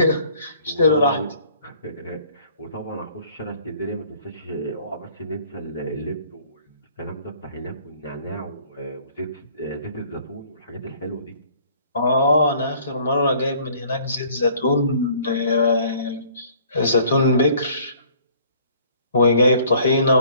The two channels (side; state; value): both; inverted; correlation -0.57